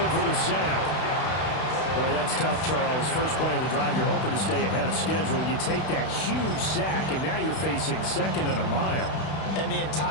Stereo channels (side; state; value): right; late; 32 ms